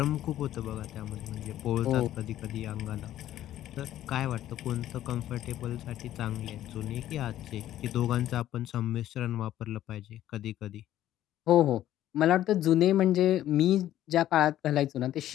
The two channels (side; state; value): right; quieter; 12.8 dB